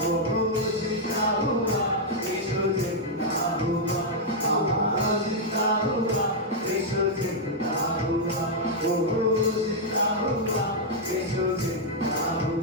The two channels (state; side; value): normal; both; correlation -0.04